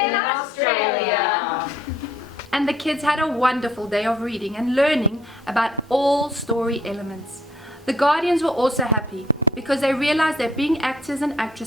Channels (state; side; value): normal; both; correlation 0.62